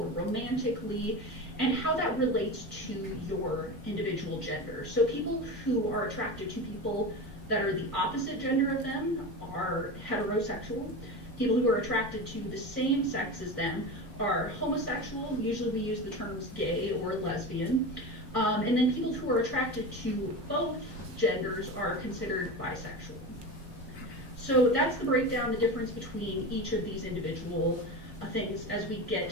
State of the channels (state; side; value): normal; both; correlation 0.25